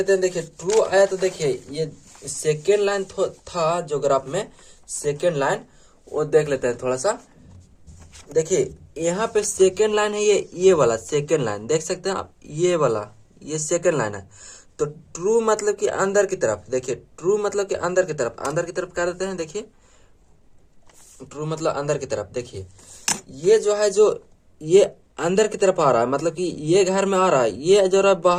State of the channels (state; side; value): identical; both; correlation 1.00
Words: हैं। देखिए ट्रू आया तो देखिए ये सेकेंड लाइन था जो ग्राफ में सेकेंड लाइन, वो देख लेते हैं थोड़ा सा। देखिए यहाँ पे सेकेंड लाइन है, ये वाला सेकेंड लाइन देख सकते हैं आप, ये वाला ये सेकेंड लाइन है। तो ट्रू मतलब कि अंदर की तरफ, देखिए ट्रू मतलब कि अंदर की तरफ, अंदर की तरफ क्या देते हैं, देखिए ट्रू मतलब अंदर की तरफ। देखिए ये जो है, जो ये अंदर की तरफ आ रहा है, मतलब कि ये घर में आ रहा है, ये जो रहा